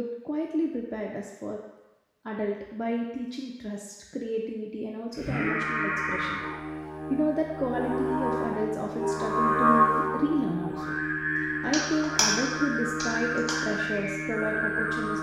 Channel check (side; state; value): both; identical; correlation 1.00